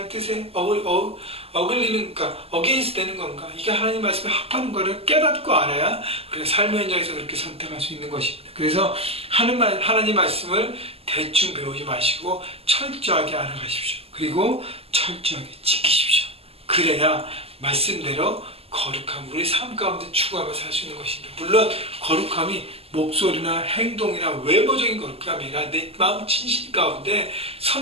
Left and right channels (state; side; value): late; left; 0.29 ms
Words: 뜻에 어글리는, 그러니까 어게인스 되는 건가, 이게 하나님 말씀에 합하는 것을 깨닫고 알아야 우리가 삶의 현장에서 그렇게 선택할 수 있는 것입니다. 그래서 하나님 말씀을 대충 배우지 마시고 철저하게 알아가십시오. 그리고 철저하게 지키십시오. 그래야 말씀대로 거룩함, 우리 삶 가운데 추구하며 살 수 있는 것입니다. 물론 거룩함이 목소리나 행동이나 외모적인 거룩함이 아니라 내 마음 진실 가운데